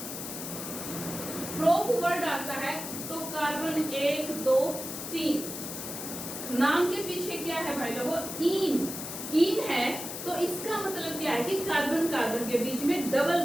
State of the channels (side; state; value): left; noise; hiss, 7 dB below the sound